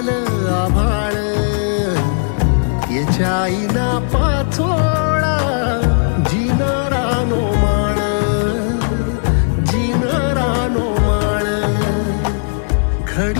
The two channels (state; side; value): silent; right; digital silence